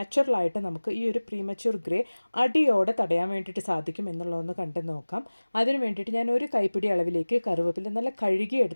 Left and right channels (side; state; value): both; inverted; correlation -1.00